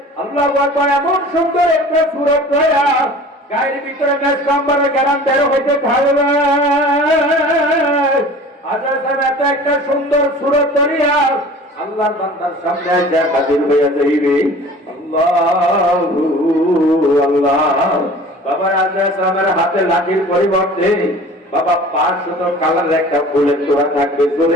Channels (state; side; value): normal; both; correlation 0.43